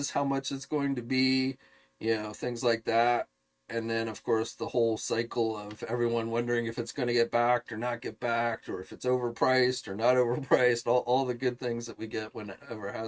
how much it's going to be, things like that. And then, of course, the whole cycle of everyone wondering if it's going to get backed or not get backed, or if it's overpriced or not overpriced, all the good things that we get whenever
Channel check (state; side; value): identical; both; correlation 1.00